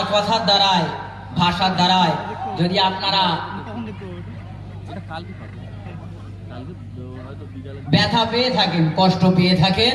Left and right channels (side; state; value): both; identical; correlation 1.00